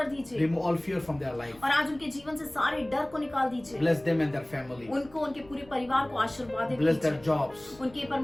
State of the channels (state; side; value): noise; left; rumble, 24 dB below the sound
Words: दीजिए Remove all fear from their life. और आज उनके जीवन से सारे डर को निकाल दीजिए। Bless them and their family. उनको, उनके पूरे परिवार को आशीर्वादित Bless their कीजिए। jobs. उनके